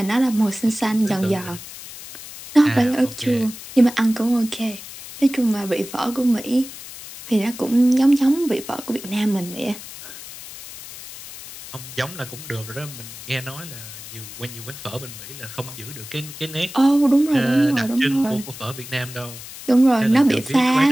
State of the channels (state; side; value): noise; left; hiss, 14 dB below the sound